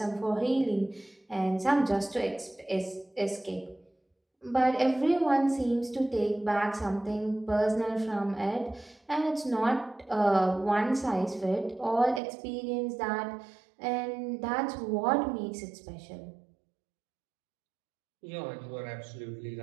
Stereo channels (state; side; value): drops out; left; at 12.2 s